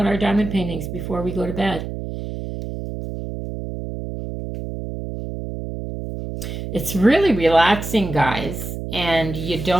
our diamond paintings before we go to bed. It's really relaxing, guys, and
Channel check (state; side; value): noise; right; hum, 7 dB below the sound